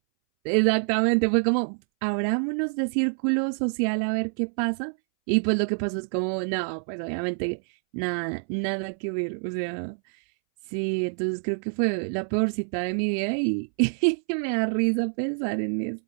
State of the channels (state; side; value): silent; left; 61 dB below the other